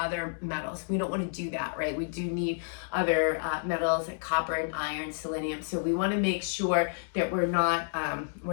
metals. We don't want to do that, right? We do need other metals like copper and iron, selenium. So we want to make sure that we're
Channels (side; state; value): right; silent; digital silence